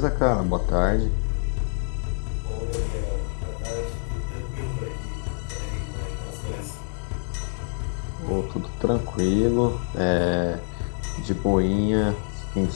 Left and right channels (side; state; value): right; silent; digital silence